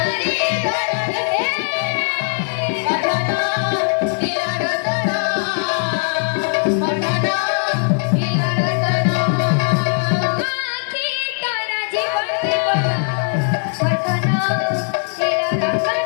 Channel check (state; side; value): silent; right; 66 dB below the other